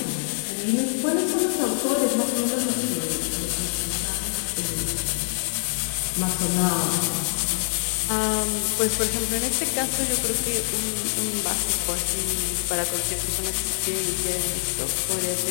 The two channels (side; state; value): right; silent; 62 dB below the other